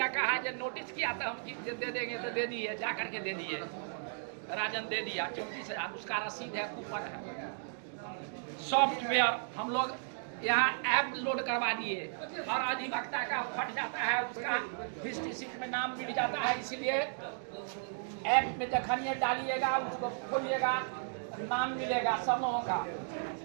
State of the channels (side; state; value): left; silent; digital silence